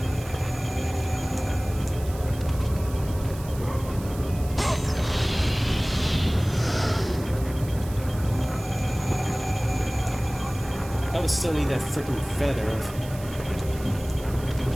I would still need that freaking feather.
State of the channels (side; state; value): right; noise; hiss, 17 dB below the sound